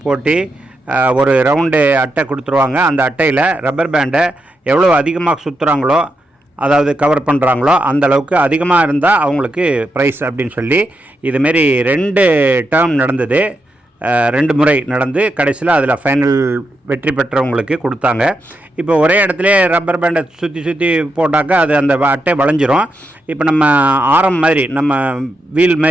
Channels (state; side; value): normal; both; correlation 0.84